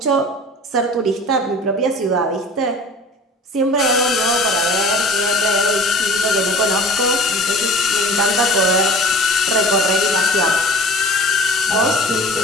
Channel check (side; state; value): both; normal; correlation 0.42